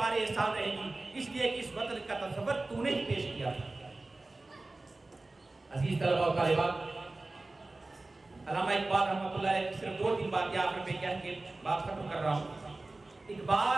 احسان رہیں گی، اس لیے کہ اس وطن کا تصور تو نے ہی پیش کیا تھا۔ عزیز طلبہ و طالبات، علامہ اقبال رحمۃ اللہ علیہ صرف 2-3 باتیں آخر پہ کہہ کے بات ختم کر رہا ہوں۔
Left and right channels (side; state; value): left; quieter; 3.1 dB